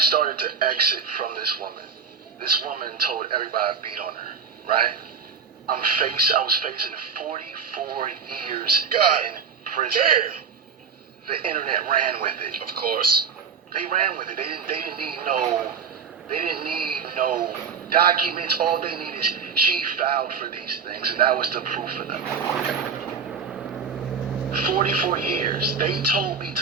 to exit from this woman told everybody I beat on her, right? I was facing 44 years in prison. Damn. The internet ran with it. Of course. They ran with it. They didn't need no documents. All they need is she filed for these things, and that was the proof for them. 44 years. They told me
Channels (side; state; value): left; quieter; 6.1 dB